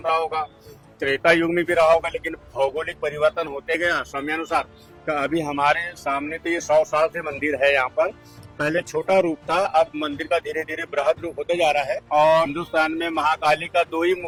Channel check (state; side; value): identical; both; correlation 1.00